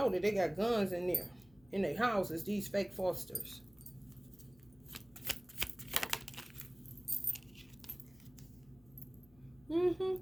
that they got guns in there, in their houses, these fake fosters.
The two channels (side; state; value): left; noise; hum, 27 dB below the sound